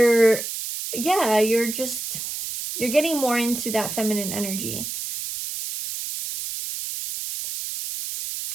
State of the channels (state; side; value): noise; right; hiss, 6 dB below the sound